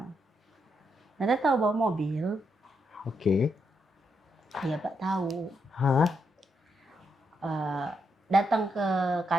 Nada tahu bawa mobil? Oke. Iya Pak tahu. Hah? Datang ke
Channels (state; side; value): normal; both; correlation 0.80